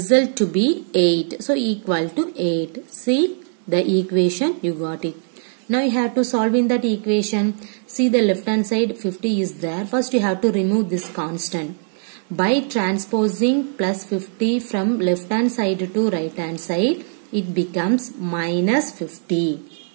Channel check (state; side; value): silent; left; digital silence